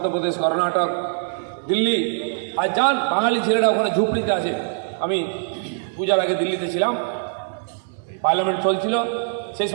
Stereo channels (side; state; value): left; silent; digital silence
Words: কর্ণাটক, দিল্লি, আর যান বাঙালি ছেলেরা ওখানে ঝুপড়িতে আছে। আমি পূজার আগে দিল্লিতে ছিলাম, পার্লামেন্ট চলছিল, সেই